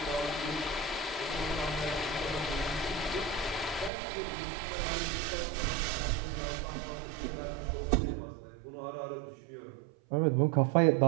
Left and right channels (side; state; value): left; drops out; at 3.9 s